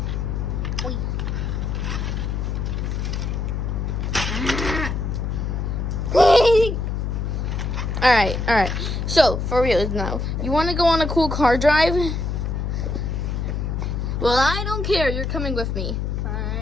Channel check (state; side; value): noise; left; hum, 1 dB below the sound